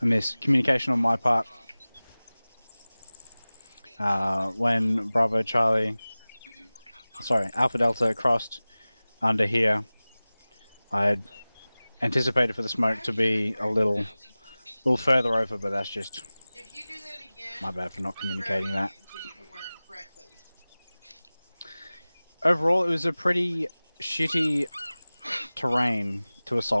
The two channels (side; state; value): both; inverted; correlation -0.99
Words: a miscommunication on my part. When Bravo Charlie, sorry, Alpha Delta crossed under here, I had anticipated for the smoke to be a little further over, but that's just my bad for not communicating that. Overall, it was a pretty shitty terrain to